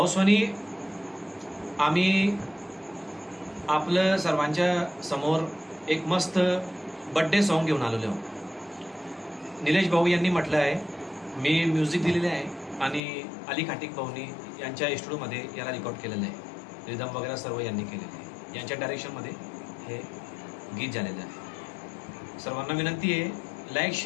आम्ही आपलं सर्वांच्या समोर एक मस्त बर्थडे सॉन्ग घेऊन आलेलो आहोत. निलेश भाऊ यांनी म्हटलं आहे, मी म्युझिक दिलेले आहे आणि अली खाटिक भाऊनी यांच्या स्टुडिओमध्ये याला रेकॉर्ड केलेलं आहे. रिदम वगैरे सर्व यांनी केलेलं आहे. यांच्या डायरेक्शनमध्ये हे गीत झालेलं आहे. सर्वांना विनंती आहे, लाईक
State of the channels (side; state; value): right; drops out; at 13.0 s